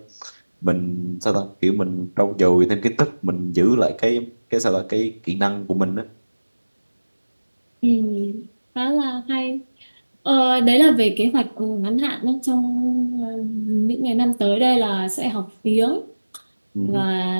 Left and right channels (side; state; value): both; inverted; correlation -1.00